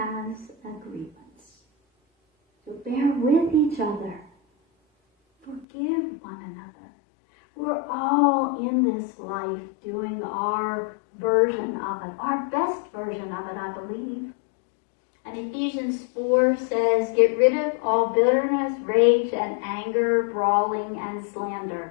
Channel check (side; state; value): right; drops out; at 5.7 s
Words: a grievance. So bear with each other. Forgive one another. We're all in this life doing our version of it, our best version of it, I believe. And Ephesians 4 says, get rid of all bitterness, rage, and anger, brawling, and